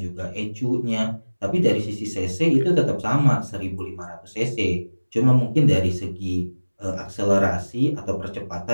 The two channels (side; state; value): both; inverted; correlation -1.00